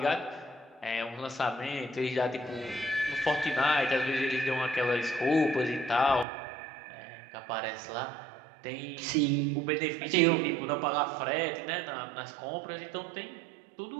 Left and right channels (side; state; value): left; drops out; at 6.2 s